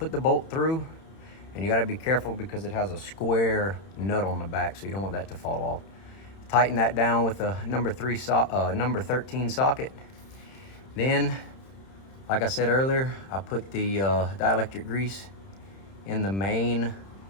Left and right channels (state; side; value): late; right; 31 ms